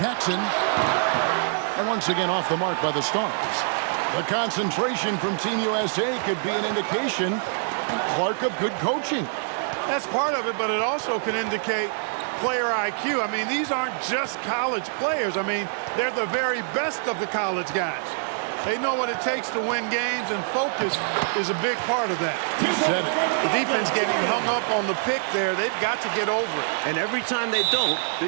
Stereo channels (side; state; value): left; silent; digital silence